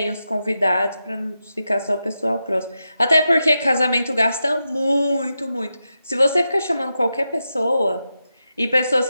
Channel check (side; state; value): both; inverted; correlation -0.89